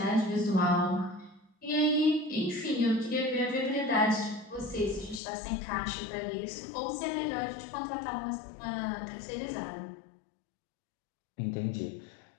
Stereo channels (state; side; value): drops out; right; at 5.2 s